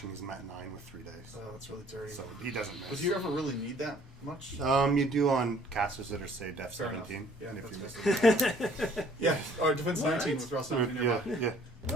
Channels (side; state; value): both; normal; correlation 0.57